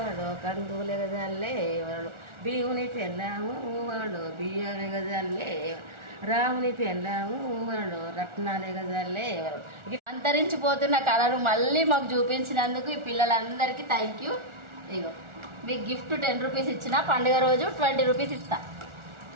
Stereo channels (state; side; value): late; left; 1.4 ms